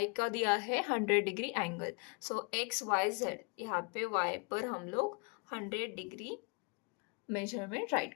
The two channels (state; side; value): quieter; right; 34.5 dB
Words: का दिया है 100 डिग्री एंगल। सो एक्स वाई जेड यहाँ पे y पर हम लोग 100 डिग्री मेजरमेंट